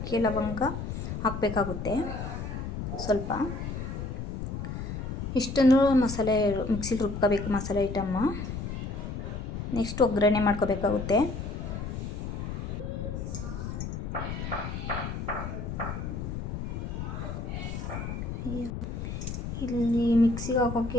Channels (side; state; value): left; noise; rumble, 5 dB below the sound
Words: ಲವಂಗ ಹಾಕಬೇಕಾಗುತ್ತೆ ಸ್ವಲ್ಪ. ಇಷ್ಟನ್ನು ಮಸಾಲೆ ಮಿಕ್ಸಿಲಿ ರುಬ್ಕೋಬೇಕು ಮಸಾಲೆ ಐಟಮ್ಮ. ನೆಕ್ಸ್ಟ್ ಒಗ್ಗರಣೆ ಮಾಡ್ಕೋಬೇಕಾಗುತ್ತೆ. ಇಲ್ಲಿ ಮಿಕ್ಸಿಗೆ